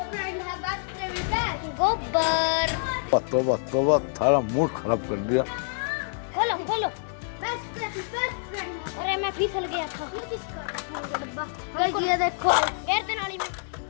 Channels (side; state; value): right; silent; digital silence